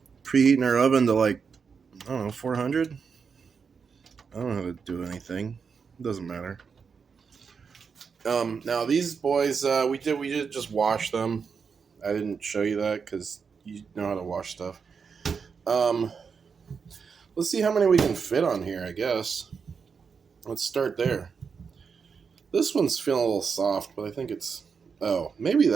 preheating our oven to I don't know, 400? I don't know how to do anything. It doesn't matter. Now these boys, we did just wash them. I didn't show you that because you know how to wash stuff. Let's see how many we can fit on here, I guess. Let's start there. This one's feeling a little soft, but I think it's... Oh, maybe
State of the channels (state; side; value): quieter; left; 5.8 dB